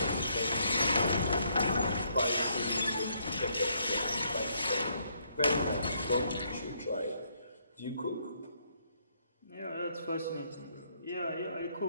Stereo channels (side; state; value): both; inverted; correlation -0.72